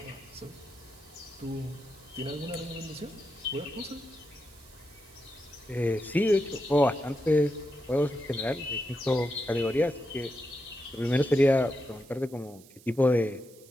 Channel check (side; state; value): right; noise; hiss, 23 dB below the sound